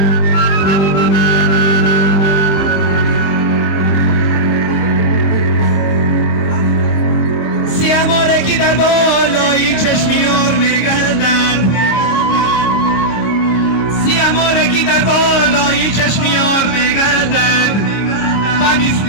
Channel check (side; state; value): right; late; 25 ms